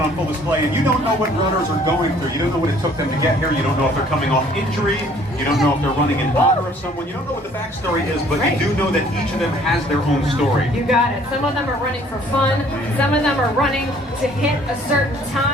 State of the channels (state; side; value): normal; both; correlation 0.57